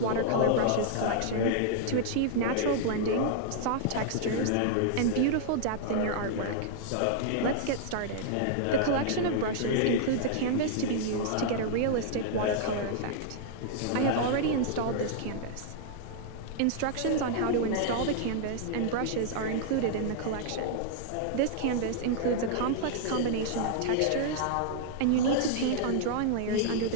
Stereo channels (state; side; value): different; both; correlation -0.01